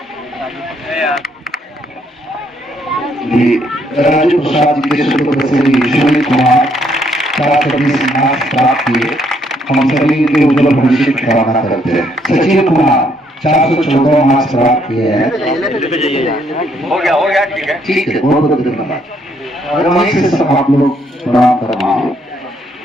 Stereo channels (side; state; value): both; normal; correlation 0.70